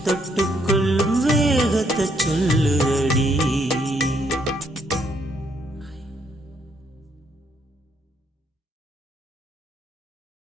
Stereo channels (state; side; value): normal; both; correlation 0.72